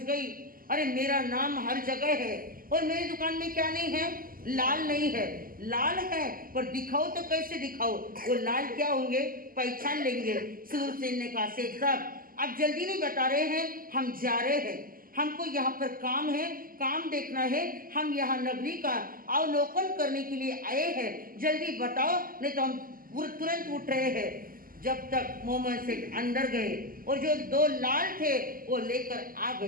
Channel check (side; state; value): left; late; 0.42 ms